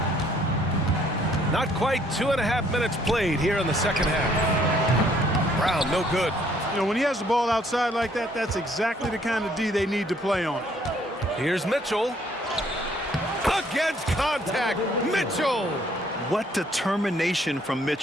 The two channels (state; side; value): normal; both; correlation 0.64